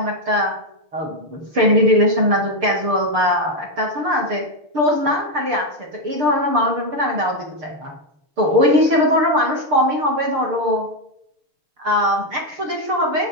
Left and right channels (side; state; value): left; late; 6.6 ms